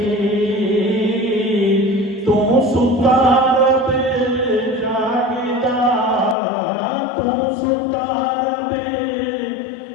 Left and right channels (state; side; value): drops out; right; at 6.4 s